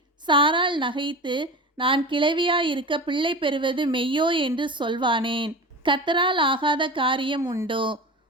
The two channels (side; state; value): both; normal; correlation 0.30